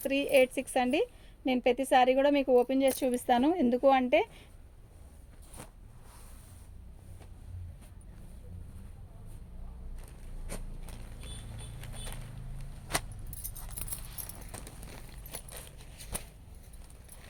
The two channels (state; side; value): identical; both; correlation 1.00